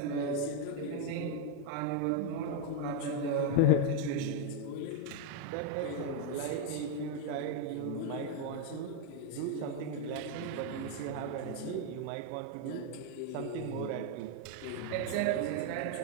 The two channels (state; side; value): different; both; correlation 0.01